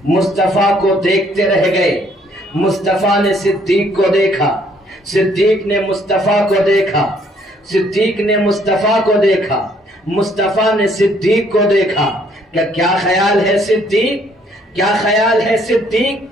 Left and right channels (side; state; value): both; normal; correlation 0.65